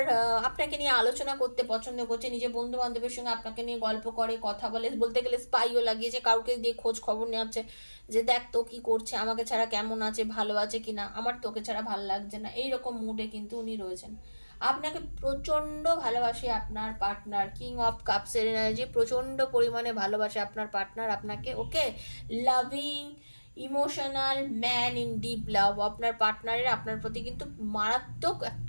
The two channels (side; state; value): both; inverted; correlation -1.00